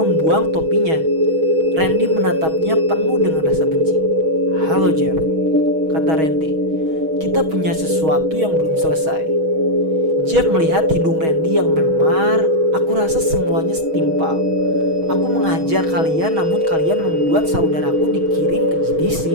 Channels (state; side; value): late; left; 6.3 ms